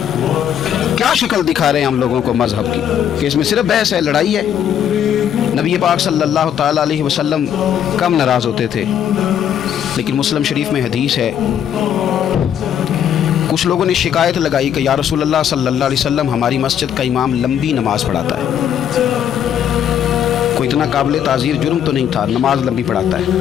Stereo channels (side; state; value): right; quieter; 9.4 dB